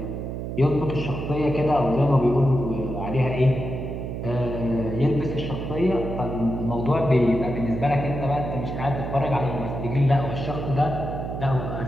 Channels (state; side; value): noise; right; hum, 5 dB below the sound